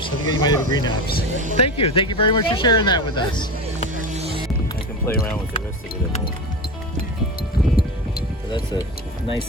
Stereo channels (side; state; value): both; normal; correlation 0.25